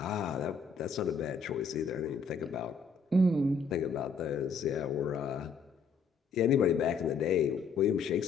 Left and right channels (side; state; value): right; quieter; 5.0 dB